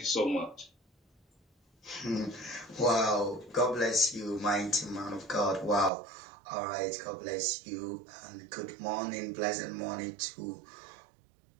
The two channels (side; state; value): left; drops out; at 5.9 s